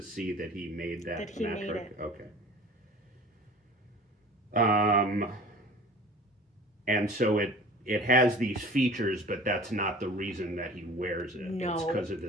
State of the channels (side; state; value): both; normal; correlation 0.43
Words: that he made that he metric. made it. Okay. And so it has these features, but that's not the reason that he wears it. No. It's because of